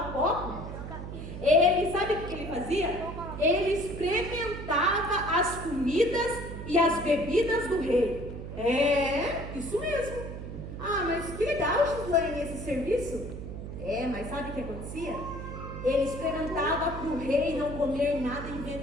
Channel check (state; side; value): noise; right; hum, 8 dB below the sound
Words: copo? Ele, sabe o que ele fazia? Ele experimentava as comidas e as bebidas do rei. É, isso mesmo. Ah, mas que legal, Gislaine, esse serviço. É, mas sabe o que acontecia? Ele experimentava para o rei não comer nada